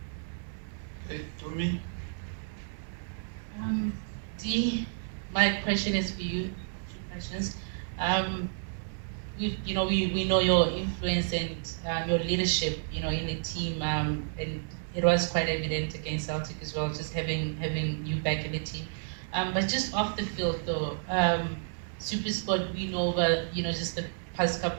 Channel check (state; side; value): silent; left; digital silence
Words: Okay, Tumi. Dee, my question is for you. 2 questions. We know your influence and your leadership, in the team, and it was quite evident against Celtic as well, just having you back in the team. But just off the field, though, SuperSport, we know over just the past